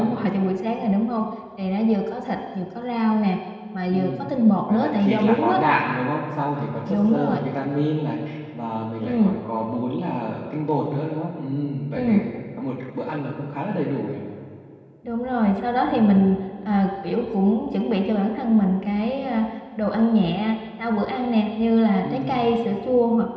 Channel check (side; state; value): both; identical; correlation 1.00